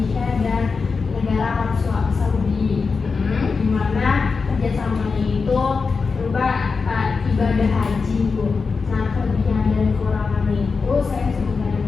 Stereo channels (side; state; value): right; quieter; 4.8 dB